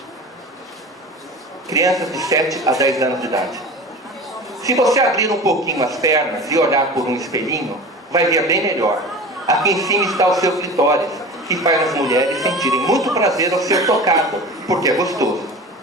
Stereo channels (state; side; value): normal; both; correlation 0.35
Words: Crianças de 7 a 10 anos de idade. Se você abrir um pouquinho as pernas e olhar por um espelhinho, vai ver bem melhor. Aqui em cima está o seu clitóris, que faz as mulheres sentirem muito prazer ao ser tocado, porque é gostoso.